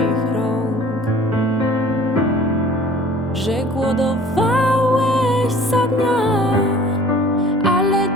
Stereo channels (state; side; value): normal; both; correlation 0.48